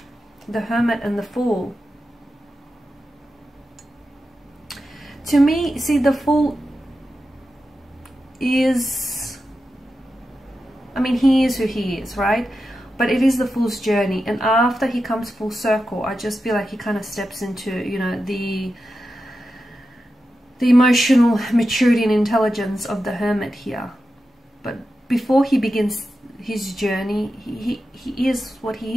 the Hermit and the Fool. To me, see, the Fool is, I mean, he is who he is, right? But it is the Fool's journey, and after he comes full circle, I just feel like he kind of steps into, you know, the emotional maturity and intelligence of the Hermit here. But before he begins his journey, he is what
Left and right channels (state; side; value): normal; both; correlation 0.90